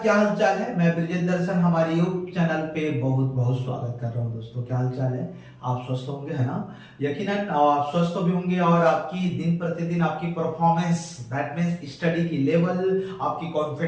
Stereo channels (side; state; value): both; identical; correlation 1.00